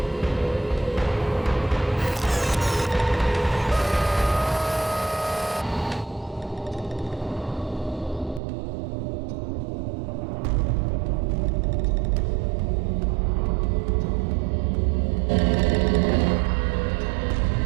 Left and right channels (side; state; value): left; drops out; at 8.4 s